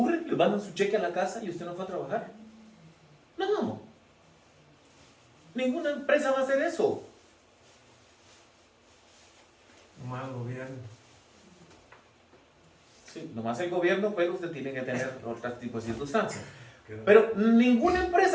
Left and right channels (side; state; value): both; identical; correlation 1.00